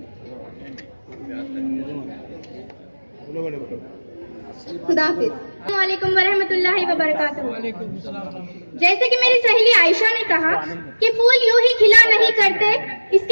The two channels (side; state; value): both; inverted; correlation -1.00